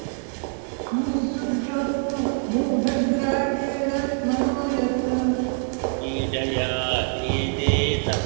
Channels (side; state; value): left; silent; 55 dB below the other